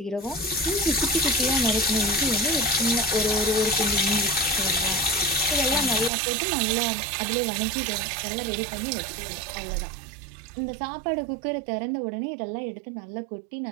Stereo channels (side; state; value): left; drops out; at 6.1 s